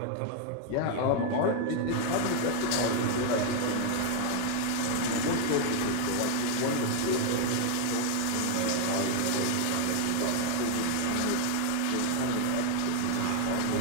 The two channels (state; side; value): different; both; correlation 0.00